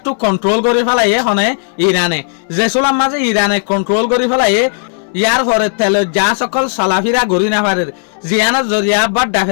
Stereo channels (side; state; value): right; silent; digital silence